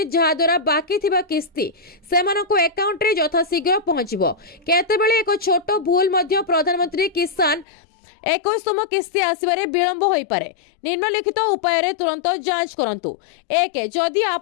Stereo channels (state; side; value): drops out; right; at 7.7 s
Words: जहा द्वारा बाकी थिबा किस्ती सेमानको अकाउंट रे यथाशीघ्र पहुंचिबो। केतेबेले एक छोट भूल मध्य प्रधानमंत्री किसान 21तम किस्ती आसबारे विलंब होई पारे। निम्नलिखित उपाय रे तुरंत जांच करंतु। 1 जदि